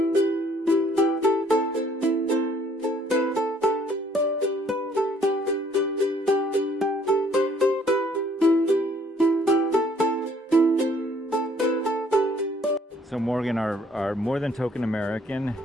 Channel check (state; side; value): normal; both; correlation 0.61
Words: So Morgan, our more than token American,